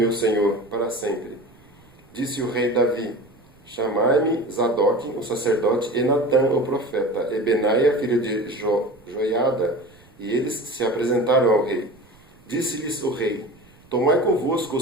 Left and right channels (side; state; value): right; noise; rumble, 28 dB below the sound